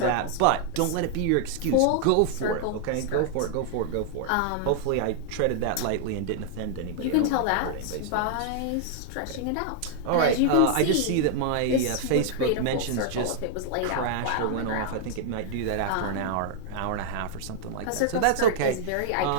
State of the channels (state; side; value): different; both; correlation 0.00